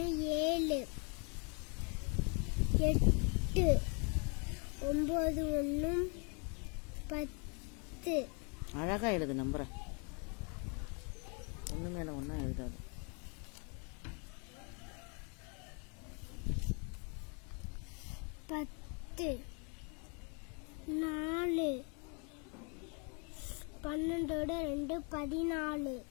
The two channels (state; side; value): quieter; right; 36.2 dB